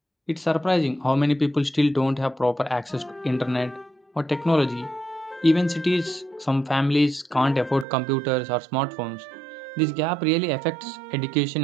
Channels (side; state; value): left; drops out; at 7.9 s